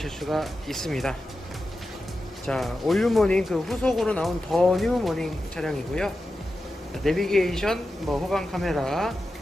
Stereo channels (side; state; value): both; normal; correlation 0.91